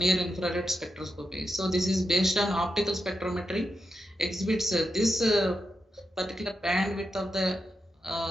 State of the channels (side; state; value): both; normal; correlation 0.87